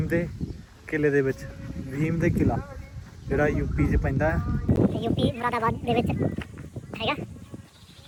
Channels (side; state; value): both; identical; correlation 1.00